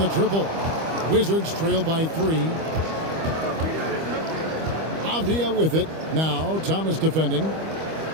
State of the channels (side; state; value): left; late; 25 ms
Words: triple. Wizards trail by 3. Avdia with it. Now Thomas defending.